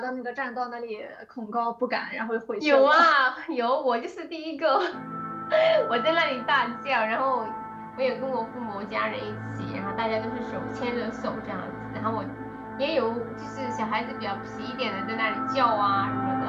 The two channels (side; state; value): both; identical; correlation 1.00